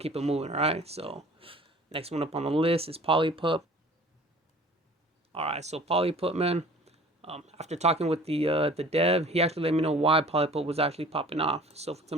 it moving, all right? So next one up on the list is PolyPup. All right, so PolyPup, man. After talking with the dev, he actually let me know why PolyPup was actually popping off. So if we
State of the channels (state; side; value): normal; both; correlation 0.47